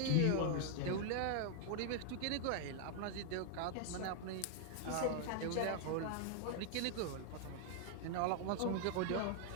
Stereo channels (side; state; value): both; different; correlation 0.00